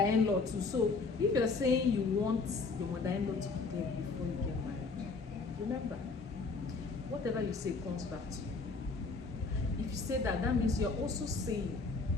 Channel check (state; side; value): quieter; right; 4.2 dB